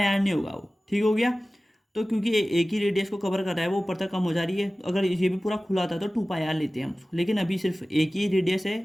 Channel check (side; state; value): both; normal; correlation 0.97